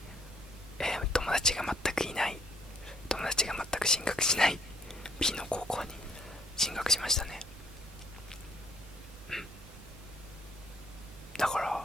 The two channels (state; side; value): normal; both; correlation 0.63